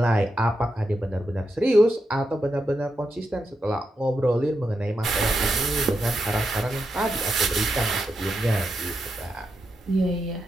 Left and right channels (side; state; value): both; normal; correlation 0.85